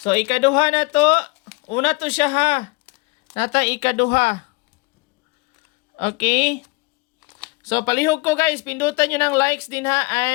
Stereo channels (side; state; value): right; quieter; 25.7 dB